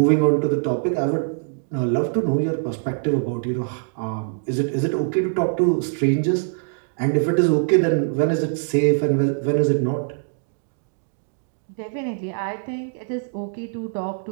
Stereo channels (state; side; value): silent; left; digital silence